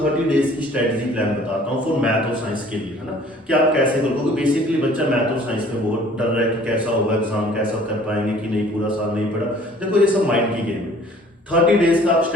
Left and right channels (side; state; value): both; normal; correlation 0.53